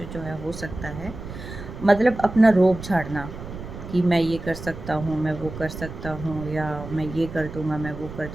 जो है हो सकता है। मतलब अपना रोब झाड़ना कि मैं ये कर सकता हूँ, मैं वो कर सकता हूँ, या मैं ये कर दूँगा, मैं वो कर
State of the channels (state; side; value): noise; right; rumble, 11 dB below the sound